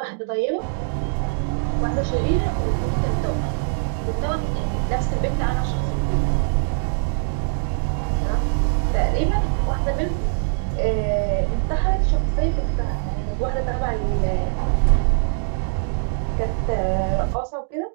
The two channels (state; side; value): silent; left; digital silence